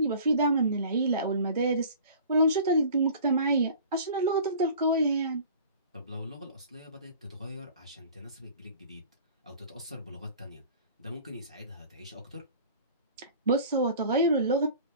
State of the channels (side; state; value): both; inverted; correlation -0.45